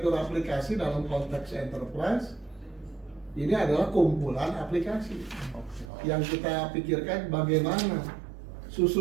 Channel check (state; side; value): drops out; left; at 5.9 s